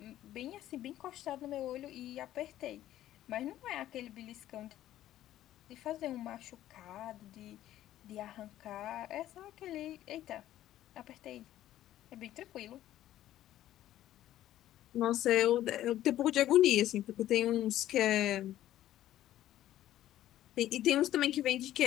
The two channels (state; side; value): quieter; right; 13.2 dB